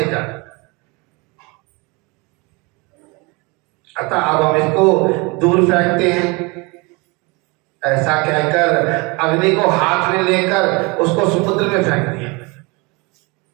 जाए? अतः अब हम इसको दूर फेंकते हैं। ऐसा कहकर अग्नि को हाथ में लेकर उसको समुद्र में फेंक दिया।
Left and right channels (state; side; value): quieter; left; 27.5 dB